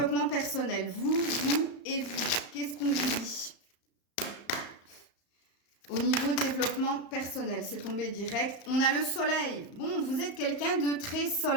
personnel, vous et vous, qu'est-ce qu'on vous dit? Au niveau développement personnel, c'est tombé direct. On a le soleil. Bon, vous êtes quelqu'un de très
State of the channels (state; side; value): late; right; 35 ms